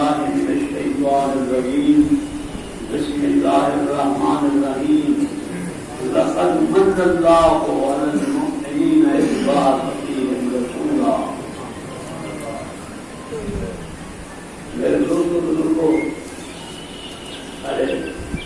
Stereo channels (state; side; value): identical; both; correlation 1.00